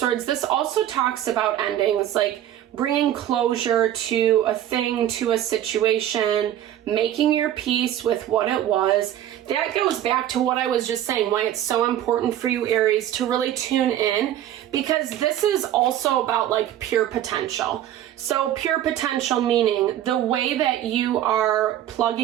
This also talks about endings, like bringing closure to a thing, to a situation, making your peace with what it was. That goes back to what I was just saying, why it's so important for you, Aries, to really tune in, because this is also about like pure potential. So pure potential meaning the way that you are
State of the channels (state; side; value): quieter; left; 11.8 dB